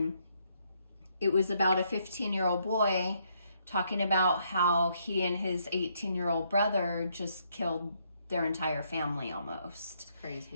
it was about a 15-year-old boy talking about how he and his 18-year-old brother just killed their entire family almost.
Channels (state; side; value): inverted; both; correlation -0.73